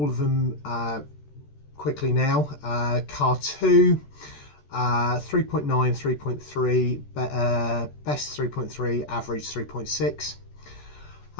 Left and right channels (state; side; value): late; right; 14 ms